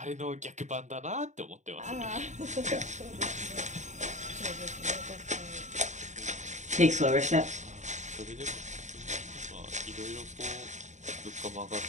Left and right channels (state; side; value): late; left; 0.34 ms